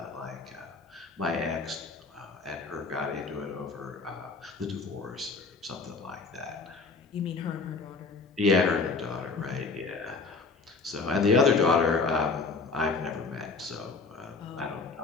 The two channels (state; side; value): quieter; right; 4.2 dB